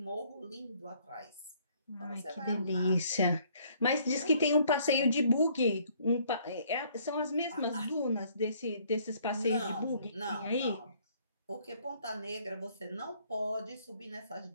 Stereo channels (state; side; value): inverted; both; correlation -0.62